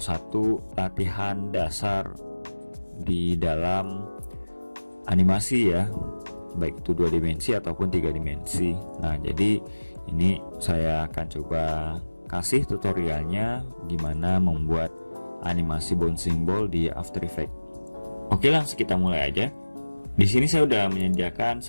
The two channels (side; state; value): both; inverted; correlation -1.00